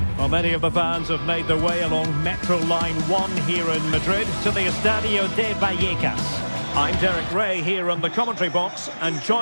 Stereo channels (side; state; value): both; inverted; correlation -1.00